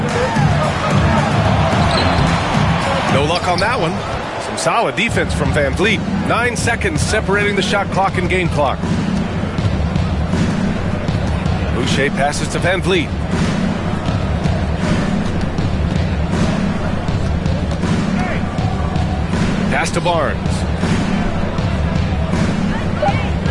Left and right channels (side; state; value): both; identical; correlation 1.00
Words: No luck on that one. Some solid defense from Van Vliet. 9 seconds separating the shot clock and game clock. Boucher passes to Van Vliet. Pass to Barnes.